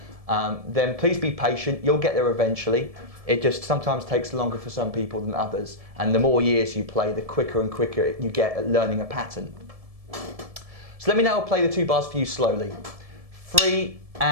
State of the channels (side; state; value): left; late; 1.7 ms